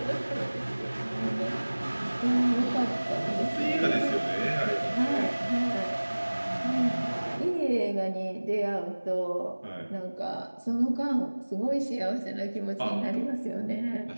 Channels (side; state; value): both; inverted; correlation -1.00